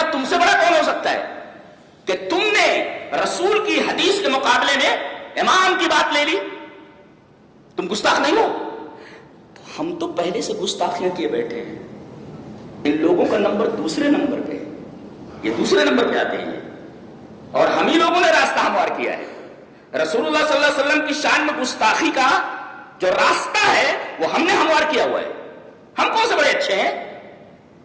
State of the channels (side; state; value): both; identical; correlation 1.00